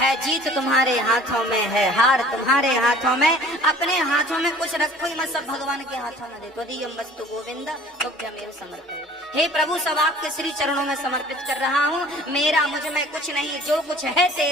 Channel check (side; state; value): both; normal; correlation 0.49